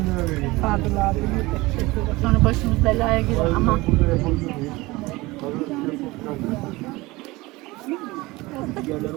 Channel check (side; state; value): left; quieter; 21.3 dB